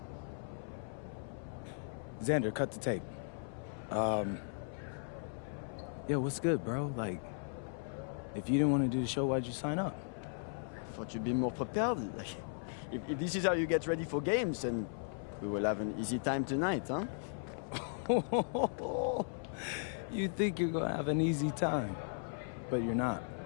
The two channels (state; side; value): silent; right; 53 dB below the other